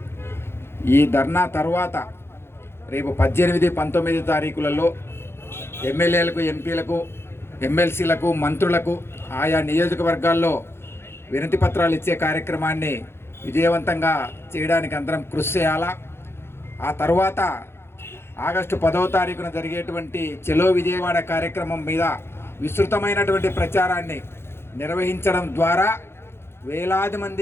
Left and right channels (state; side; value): late; right; 0.12 ms